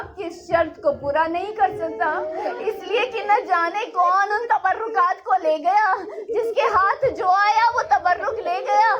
کی اس شرط کو پورا نہیں کر سکتا، اس لیے کہ نہ جانے کون ان تبرکات کو لے گیا، جس کے ہاتھ جو آیا وہ تبرک لے گیا۔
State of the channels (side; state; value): both; identical; correlation 1.00